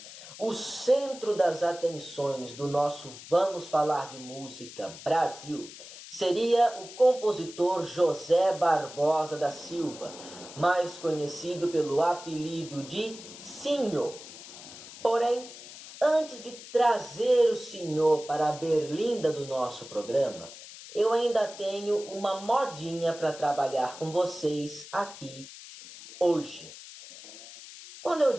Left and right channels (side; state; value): left; noise; hiss, 15 dB below the sound